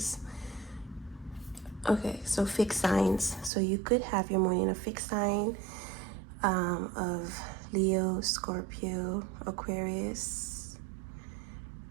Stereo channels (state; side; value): drops out; left; at 3.5 s